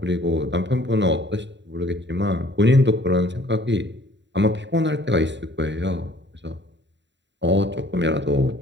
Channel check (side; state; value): left; late; 0.52 ms